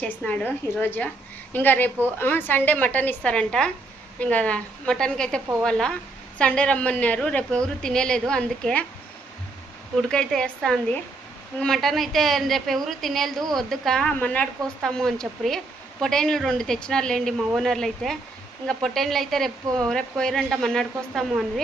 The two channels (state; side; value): quieter; left; 3.2 dB